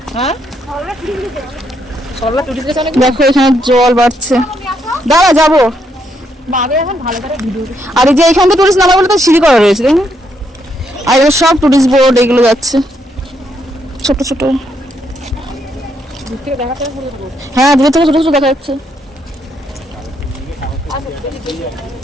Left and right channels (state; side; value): normal; both; correlation 0.76